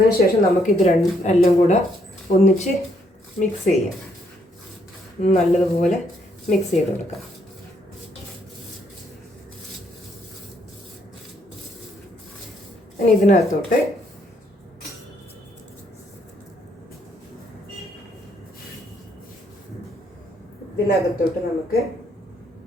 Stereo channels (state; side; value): normal; both; correlation 0.71